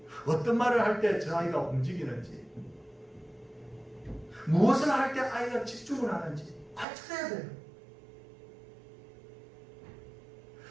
어떤 말을 할 때 저 아이가 움직이는지, 무엇을 할 때 아이가 집중을 하는지 관찰해야 돼요.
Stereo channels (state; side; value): drops out; left; at 6.9 s